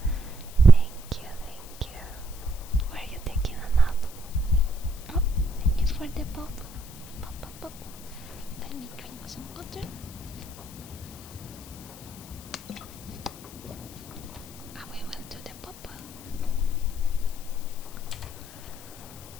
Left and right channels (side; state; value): left; noise; hiss, 17 dB below the sound